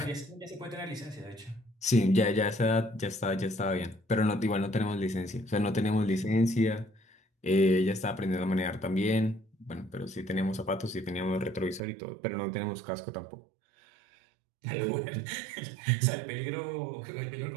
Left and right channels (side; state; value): left; drops out; at 11.8 s